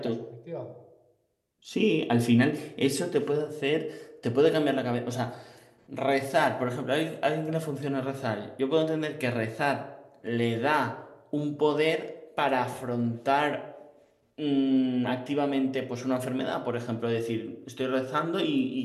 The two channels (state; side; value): identical; both; correlation 1.00